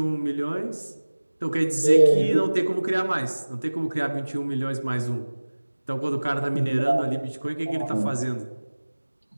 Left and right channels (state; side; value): inverted; both; correlation -1.00